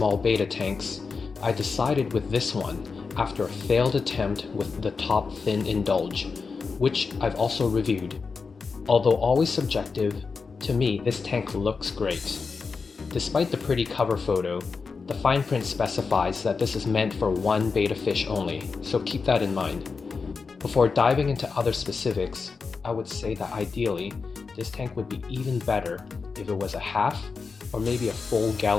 beta tanks, I decided with this one after a failed attempt with the Top Fin Indulge, which I've also reviewed. Although always subjective, to me this tank looks great. Despite the pretty cover photo, the fine print specifies that this is meant for one beta fish only, so keep that in mind. Before diving into other specifics, I would say that ideally, this tank would be even better if it was a half or maybe a full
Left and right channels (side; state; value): right; quieter; 4.9 dB